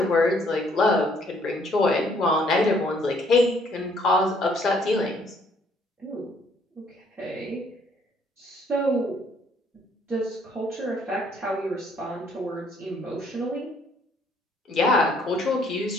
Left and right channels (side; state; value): both; normal; correlation 0.64